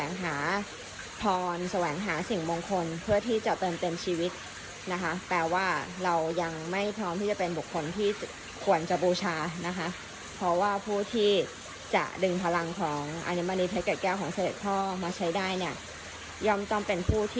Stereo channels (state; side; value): identical; both; correlation 1.00